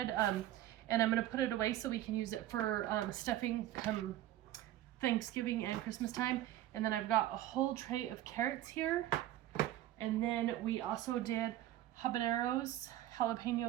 and I'm going to put it away so we can use it for stuffing come Thanksgiving and Christmas time. And then I've got a whole tray of carrots here. And then we also did habaneros,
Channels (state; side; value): quieter; left; 13.6 dB